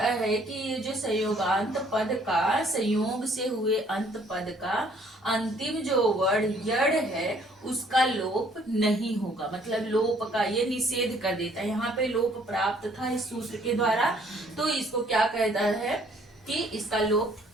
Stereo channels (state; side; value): normal; both; correlation 0.61